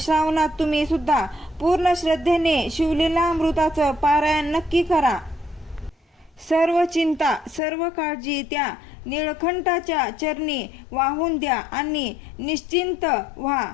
श्रावणात तुम्ही सुद्धा पूर्ण श्रद्धेने शिवलीलामृताचं पारायण नक्की करा. सर्व चिंता, सर्व काळजी त्या निळकंठाच्या चरणी वाहून द्या आणि निश्चिंत व्हा.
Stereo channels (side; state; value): right; drops out; at 7.6 s